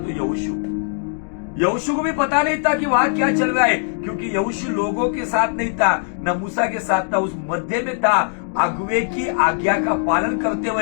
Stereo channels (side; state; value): right; silent; digital silence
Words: यहोशू को भी पता नहीं था कि वहां क्या चल रहा है, क्योंकि यहोशू लोगों के साथ नहीं था, न मूसा के साथ था, उस मध्य में था, अगुवे की आज्ञा का पालन करते